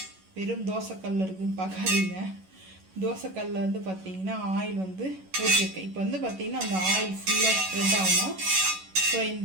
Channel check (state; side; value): late; left; 11 ms